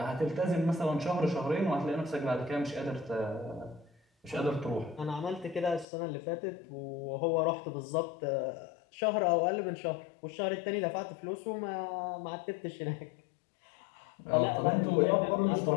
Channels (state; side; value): drops out; right; at 5.9 s